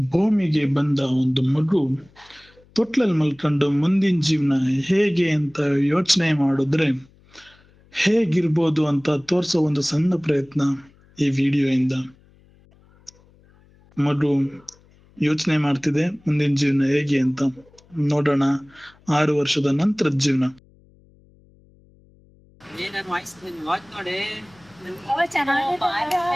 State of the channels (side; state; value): left; noise; hum, 30 dB below the sound